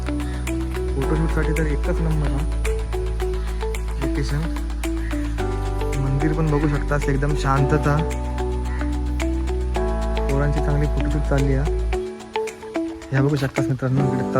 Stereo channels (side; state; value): both; identical; correlation 1.00